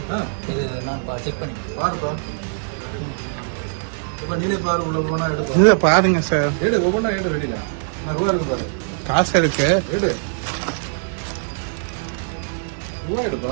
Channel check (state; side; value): silent; left; digital silence